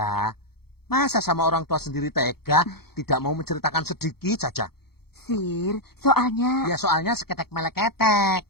Masa sama orang tua sendiri tega, tidak mau menceritakan sedikit saja? Sir, soalnya... Ya soalnya seketek meleketek.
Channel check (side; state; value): right; late; 0.95 ms